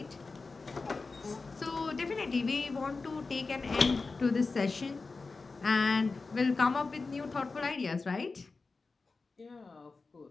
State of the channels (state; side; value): quieter; right; 4.0 dB